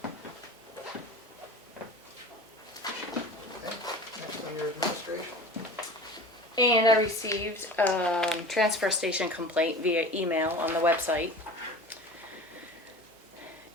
Okay, next on your administration. And I received a transfer station complaint via email on the website.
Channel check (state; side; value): normal; both; correlation 0.37